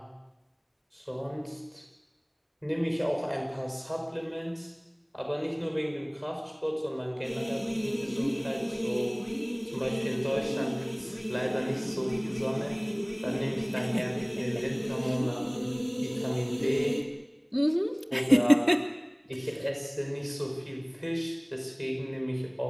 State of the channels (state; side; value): identical; both; correlation 1.00